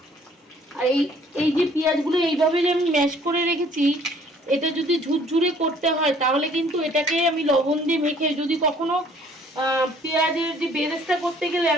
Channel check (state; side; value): normal; both; correlation 0.58